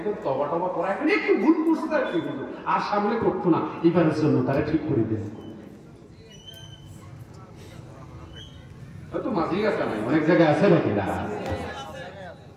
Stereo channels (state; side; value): identical; both; correlation 1.00